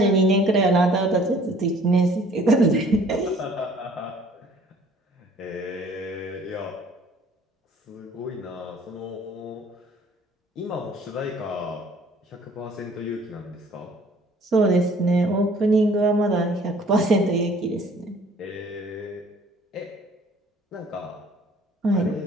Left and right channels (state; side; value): normal; both; correlation 0.55